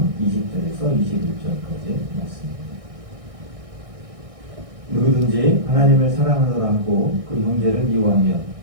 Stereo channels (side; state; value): left; late; 1.6 ms